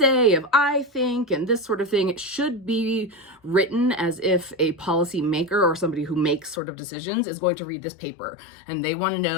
of I think and this sort of thing. It should be written as if a policy maker or somebody who makes sort of decisions is going to read this paper and they want to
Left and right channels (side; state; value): right; drops out; at 6.6 s